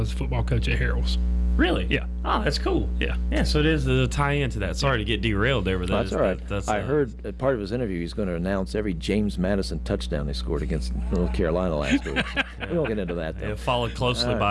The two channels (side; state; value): both; identical; correlation 1.00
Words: football coach at Harrell's. Really? Yeah. Oh, that's cool. Yeah. Yeah, so it is a tie-in to that. Sorry to get derailed there, but that's all right. I heard at part of his interview he's going to announce every James Madison touchdown they scored against North Carolina last week. We won't get into that, though. Followed closely